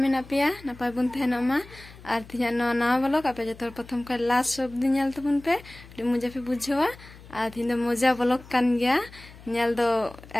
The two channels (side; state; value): left; noise; hum, 20 dB below the sound